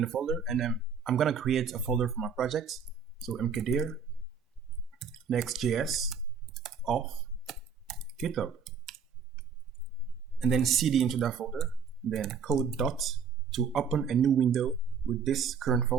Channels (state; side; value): quieter; left; 6.2 dB